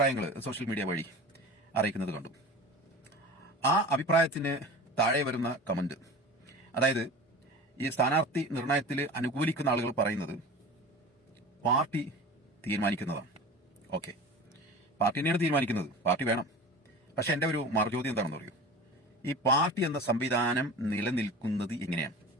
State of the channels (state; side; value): normal; both; correlation 0.36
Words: സോഷ്യൽ മീഡിയ വഴി അറിയിക്കുന്നത് കണ്ടു. ആ അഭിപ്രായത്തിന് താഴെ വരുന്ന കമന്റ്, അതായത് ഈ സ്ഥാനാർത്ഥി നിർണയത്തിൽ അനുകൂലിക്കുന്ന ആളുകൾ പറയുന്നത് പാർട്ടി തീരുമാനിക്കുന്നതാണ്. ഓക്കെ, പാർട്ടി തന്നെയാണ് തീരുമാനിക്കുന്നത്, പാർട്ടി വേണം. പക്ഷെ എന്റെ ഒരു മറുചോദ്യം എന്താണെന്ന് പറയൂ, ഈ പാർട്ടി എന്ന സംവിധാനം നിലനിൽക്കുന്നത് എങ്ങനെയാണ്?